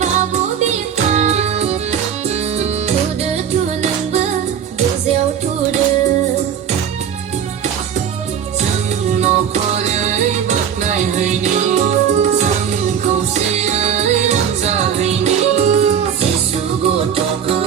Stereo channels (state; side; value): quieter; left; 8.3 dB